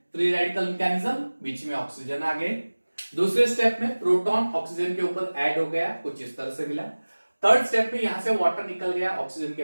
फ्री रेडिकल मैकेनिज्म, बीच में ऑक्सीजन आ गए। दूसरे स्टेप में प्रोटॉन ऑक्सीजन के ऊपर ऐड हो गया, कुछ इस तरह से मिला। थर्ड स्टेप में यहां से वाटर निकल गया, ऑक्सीजन के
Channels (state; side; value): inverted; both; correlation -1.00